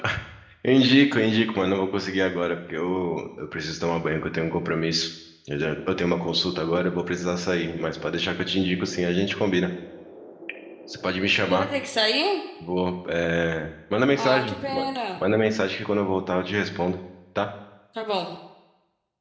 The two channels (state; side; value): identical; both; correlation 1.00